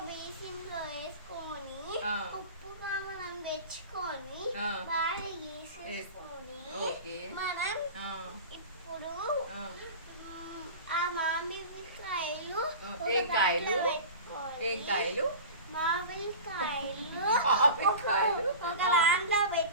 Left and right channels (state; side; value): inverted; both; correlation -0.33